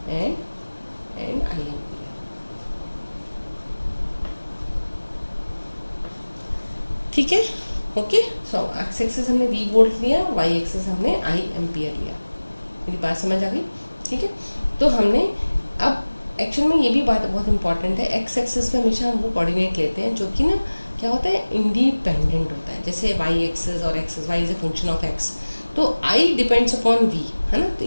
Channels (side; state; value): both; inverted; correlation -1.00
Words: and I ampere. ठीक है, ओके। सो एक्स एक्सिस हमने वी वोल्ट लिया, वाई एक्सिस हमने आई एम्पियर लिया। मेरी बात समझ आ गई। ठीक है, तो हमने अब एक्चुअल में ये भी बात बहुत इंपॉर्टेंट है, एक्स एक्सिस पे हमेशा हम वो कोऑर्डिनेट लेते हैं जो कि ना क्या होता है, इंडिपेंडेंट होता है। जैसे वाई एक्सिस और axis, y is a function of x, तो आई डिपेंड्स अपॉन वी है ना, तो